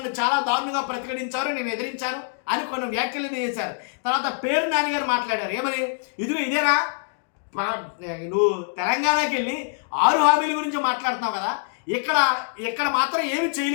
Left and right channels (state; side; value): silent; right; digital silence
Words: చాలా దారుణంగా ప్రతిఘటించారు, నేను ఎదిరించాను అని కొన్ని వ్యాఖ్యలు చేశారు. తర్వాత పేర్ని నాని గారు మాట్లాడారు, ఏమని, ఇదేనా నువ్వు తెలంగాణకి వెళ్ళి 6 హామీల గురించి మాట్లాడుతున్నావు కదా, ఇక్కడ మాత్రం ఏమి